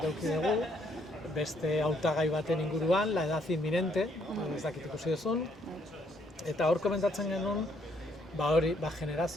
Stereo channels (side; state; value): both; normal; correlation 0.70